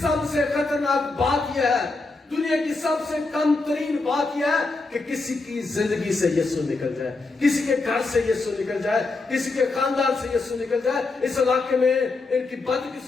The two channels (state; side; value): quieter; right; 3.6 dB